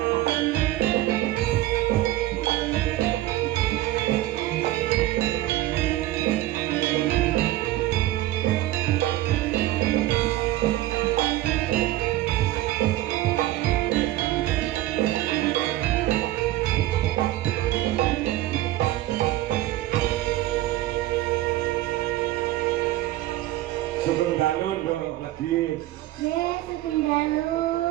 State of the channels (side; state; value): left; quieter; 15.5 dB